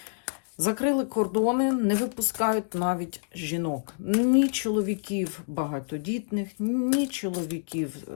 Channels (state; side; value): silent; right; digital silence